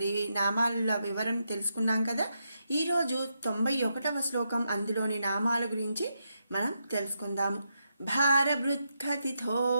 నామాల వివరణ తెలుసుకున్నాం కదా. ఈరోజు 91వ శ్లోకం అందులోని నామాల గురించి మనం తెలుసుకుందాము. భారభృత్కథితో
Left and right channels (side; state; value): both; inverted; correlation -0.83